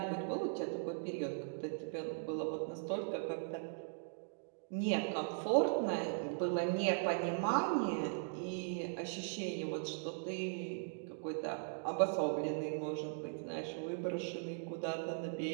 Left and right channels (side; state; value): left; silent; digital silence